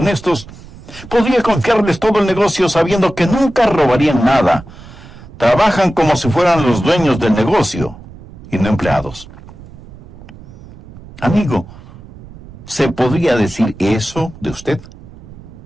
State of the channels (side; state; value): right; noise; rumble, 19 dB below the sound